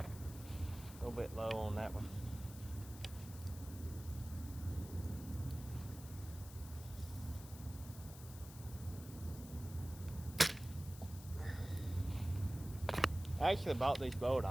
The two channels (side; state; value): left; noise; hiss, 16 dB below the sound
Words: A little bit low on that one. I actually bought this bow at